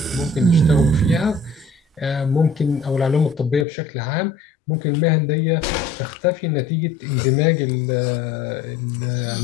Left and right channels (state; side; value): drops out; right; at 3.7 s